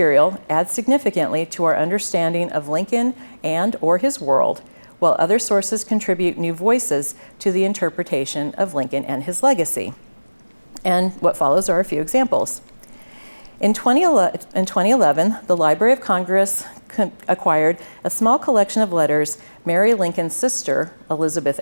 adds significantly to our understanding of Lincoln and or his world, while other sources contribute new voices to the interpretation of Lincoln and his legacy. And what follows are a few examples. In 2011, the Library of Congress acquired a small collection of letters Mary Lincoln's sister, Elizabeth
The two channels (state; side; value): inverted; both; correlation -1.00